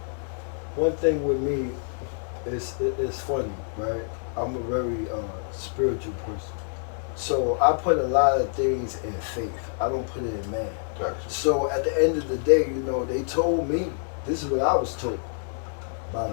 one thing with me, it's funny, right? I'm a very spiritual person. So I put a lot of things in faith. I don't put it in man. Gotcha. So at the end of the day, you know, they told me, this is what I was told by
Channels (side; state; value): right; silent; digital silence